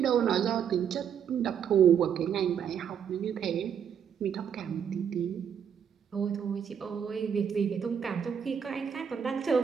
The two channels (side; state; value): left; quieter; 8.0 dB